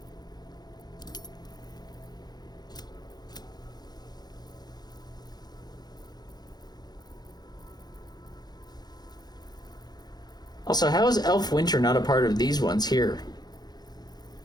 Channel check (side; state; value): right; late; 0.20 ms